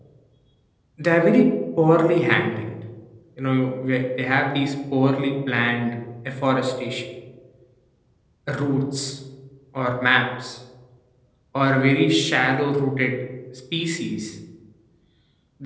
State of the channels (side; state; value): both; identical; correlation 1.00